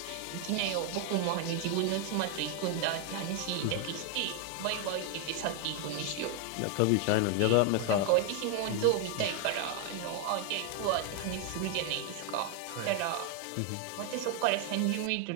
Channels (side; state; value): both; different; correlation 0.00